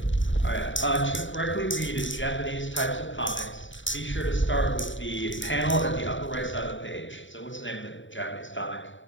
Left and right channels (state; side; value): late; right; 0.55 ms